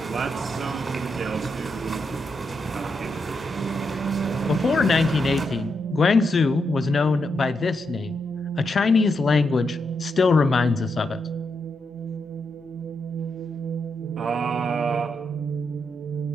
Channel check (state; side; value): normal; both; correlation 0.82